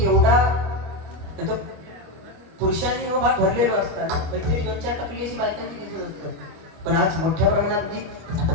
एवढा पुरुषांनी हा भाग भरलेलो असताना काहीतरी 2-4 टक्के अशी बायकांची दिसत असतात पण आज मोठ्या प्रमाणात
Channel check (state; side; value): late; left; 25 ms